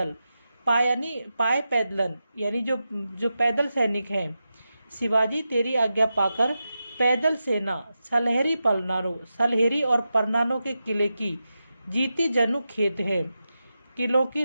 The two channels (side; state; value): both; inverted; correlation -0.90